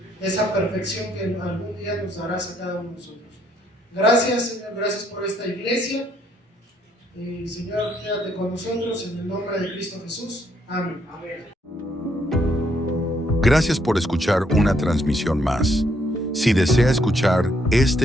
esa perfección que algún día nos darás a cada uno de nosotros. Gracias, Señor, gracias por esta iglesia. Y Señor, quédate con nosotros en el nombre de Cristo Jesús. Amén. Gracias por escuchar una transmisión más. Si desea escuchar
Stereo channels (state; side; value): normal; both; correlation 0.71